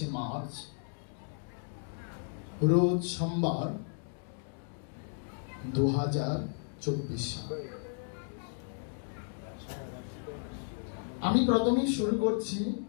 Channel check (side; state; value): right; silent; digital silence